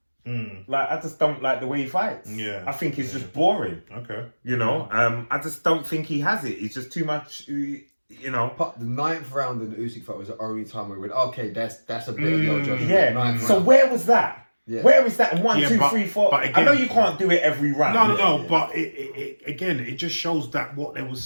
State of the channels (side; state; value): both; inverted; correlation -1.00